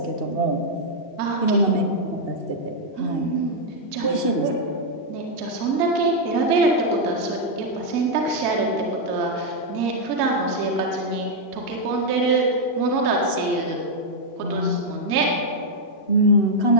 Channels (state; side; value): late; right; 2.7 ms